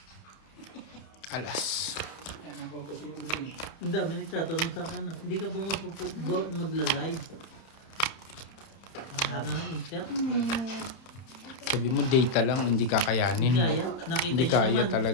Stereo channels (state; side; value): late; right; 30 ms